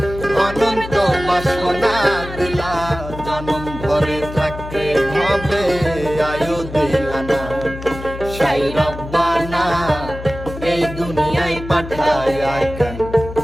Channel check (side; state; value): left; noise; hum, 11 dB below the sound